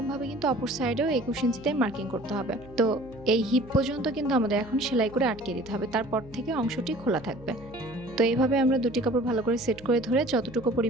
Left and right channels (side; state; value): right; noise; hum, 20 dB below the sound